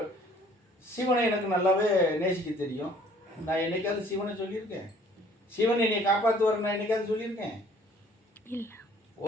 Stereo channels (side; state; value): both; normal; correlation 0.56